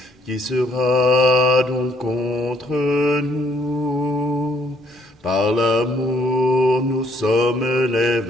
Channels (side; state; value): both; normal; correlation 0.66